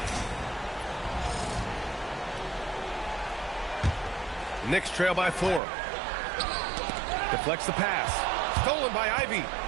Knicks trail by 4. Deflects the pass. Stolen by Ivy.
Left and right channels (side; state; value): left; drops out; at 5.6 s